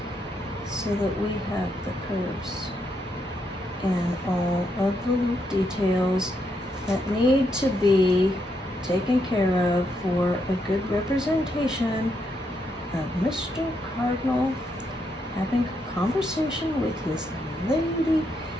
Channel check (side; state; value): both; normal; correlation 0.79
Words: so that we have the curves and all of the little details that need to be taken care of for a good representation of Mr. Cardinal having a conversation with his lady.